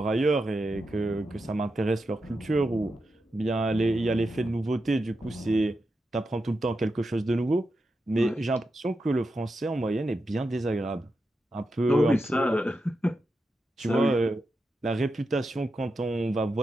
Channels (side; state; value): both; normal; correlation 0.88